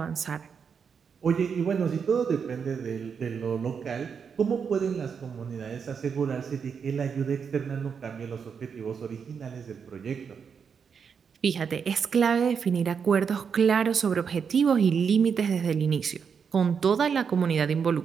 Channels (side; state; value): left; quieter; 6.5 dB